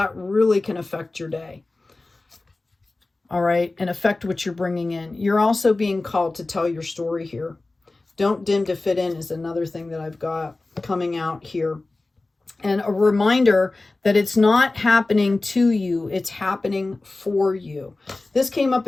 really can affect your day. All right, and affect what you're bringing in. You're also being called to tell your story here. Don't dim to fit in is another thing that I've got coming out here. And a reminder that it's not happening to you, it's happening for you. This came up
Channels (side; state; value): right; quieter; 3.2 dB